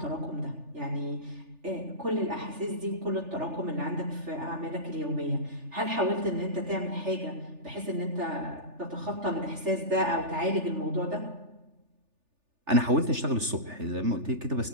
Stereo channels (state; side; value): late; left; 3.4 ms